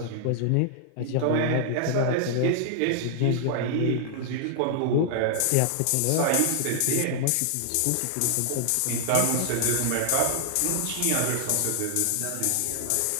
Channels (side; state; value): both; different; correlation -0.01